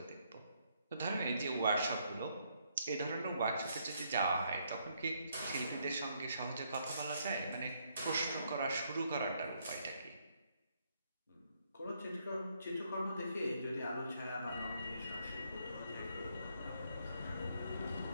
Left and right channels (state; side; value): inverted; both; correlation -0.73